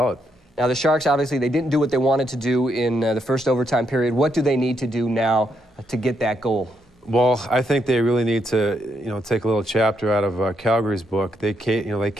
Now, the Sharks, obviously, they didn't do what they wanted to do in the first overtime period. What do they need to do now to get that goal? Well, I think they really need to, you know, take a little chapter out of Calgary's book. They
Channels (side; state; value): both; normal; correlation 0.78